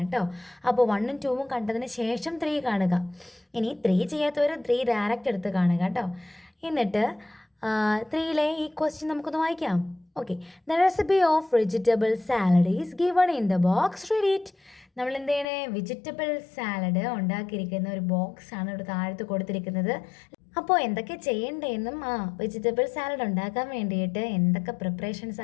കേട്ടോ. അപ്പോൾ 1ഉം 2ഉം കണ്ടതിന് ശേഷം 3 കാണുക. ഇനി 3 ചെയ്യാത്തവർ 3 ഡയറക്റ്റ് എടുത്ത് കാണുക കേട്ടോ. എന്നിട്ട് 3ലെ ഈ ക്വസ്റ്റ്യൻ നമുക്കൊന്ന് വായിക്കാം. Okay, the recipe of vegetable salad is given in the box. Read it. നമ്മൾ എന്ത് ചെയ്യണേ? വെജിറ്റബിൾ സാലഡ് ഉണ്ടാക്കിയിരിക്കുന്ന ഒരു ബോക്സ് ആണ് ഇവിടെ താഴത്ത് കൊടുത്തിരിക്കുന്നത്. അപ്പോൾ എന്തൊക്കെ ചെയ്യേണ്ടതെന്നും വെജിറ്റബിൾ സാലഡ് ഉണ്ടാക്കാൻ വേണ്ടിയിട്ട് എന്തൊക്കെ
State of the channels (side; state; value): right; drops out; at 15.5 s